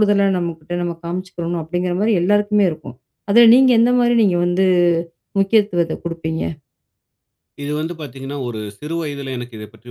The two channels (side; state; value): both; identical; correlation 1.00